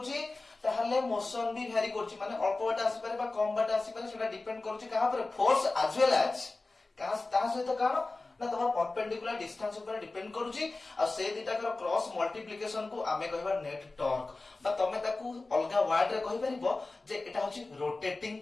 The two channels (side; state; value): right; quieter; 3.3 dB